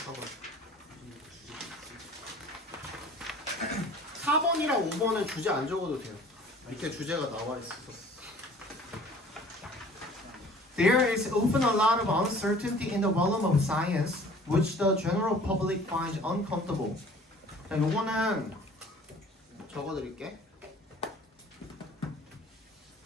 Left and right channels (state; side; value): normal; both; correlation 0.49